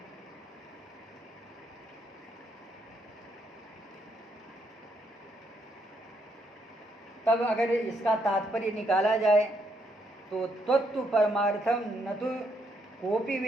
तब अगर इसका तात्पर्य निकाला जाए तो तत्व परमार्थम न तो कोपि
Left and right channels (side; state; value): both; normal; correlation 0.75